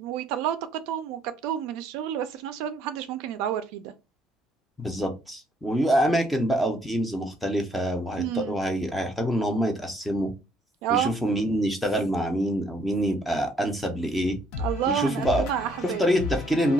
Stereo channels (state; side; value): normal; both; correlation 0.66